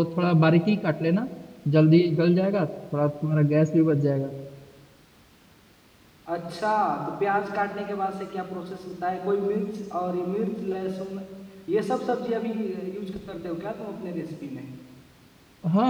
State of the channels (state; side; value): identical; both; correlation 1.00